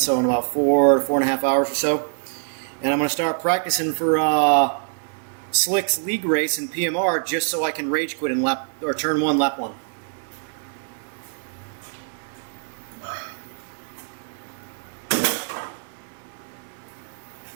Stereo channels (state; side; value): silent; left; digital silence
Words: so in about 4.5 hours or so. And I'm gonna start practicing for Slick's league race in PMR just so I can rage quit in turn 1, lap 1.